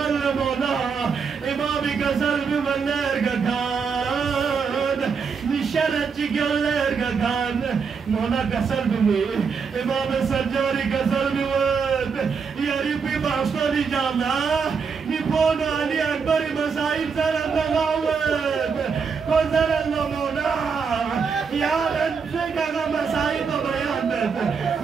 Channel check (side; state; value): left; quieter; 5.8 dB